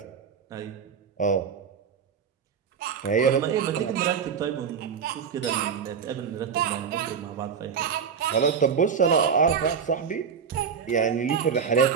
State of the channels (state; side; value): quieter; left; 6.7 dB